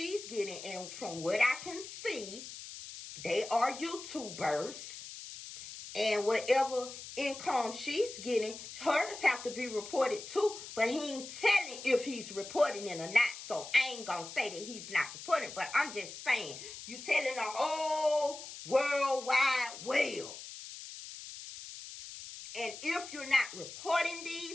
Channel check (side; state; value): left; noise; hiss, 12 dB below the sound